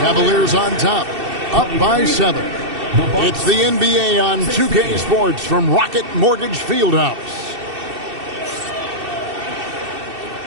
Cavaliers on top, up by 7. It's the NBA on 2K Sports from Rocket Mortgage Fieldhouse.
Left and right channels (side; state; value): left; late; 2.7 ms